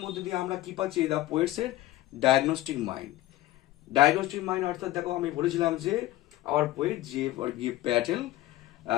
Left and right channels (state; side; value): quieter; right; 16.1 dB